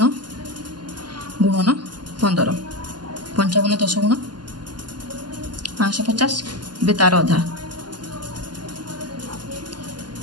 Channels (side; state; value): left; late; 0.71 ms